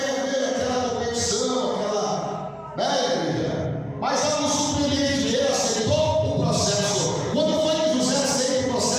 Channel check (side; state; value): both; identical; correlation 1.00